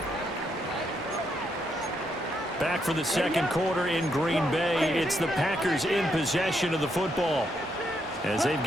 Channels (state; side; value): normal; both; correlation 0.78